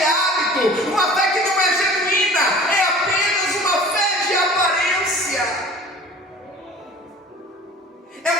hábito, uma fé que não é genuína, é apenas uma fé de aparência. É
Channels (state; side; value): normal; both; correlation 0.44